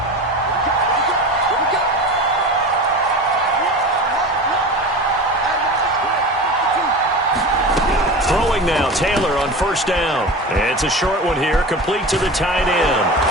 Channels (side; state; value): both; normal; correlation 0.31